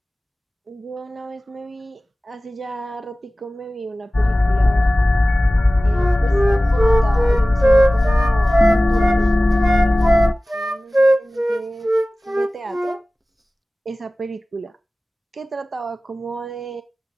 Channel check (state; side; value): normal; both; correlation 0.97